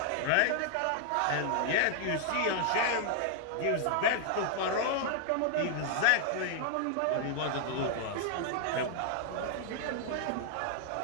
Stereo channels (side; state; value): both; different; correlation 0.00